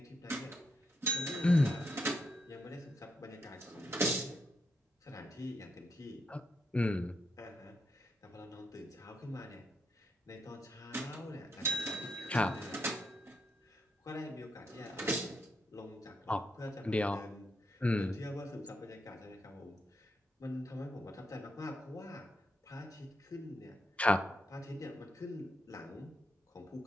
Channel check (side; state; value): both; normal; correlation 0.80